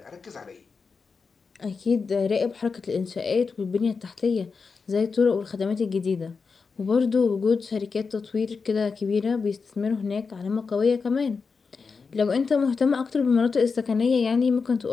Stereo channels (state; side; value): quieter; right; 5.0 dB